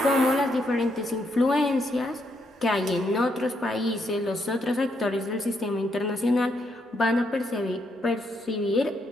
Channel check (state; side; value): normal; both; correlation 0.77